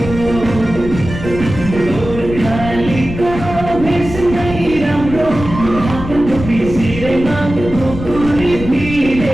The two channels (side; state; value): left; noise; rumble, 9 dB below the sound